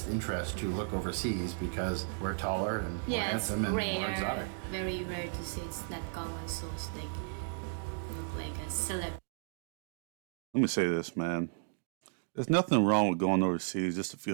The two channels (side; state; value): left; silent; digital silence